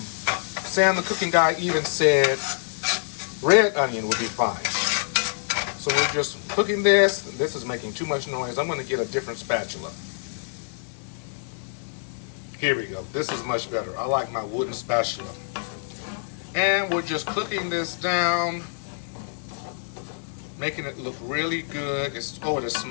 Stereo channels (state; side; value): silent; right; digital silence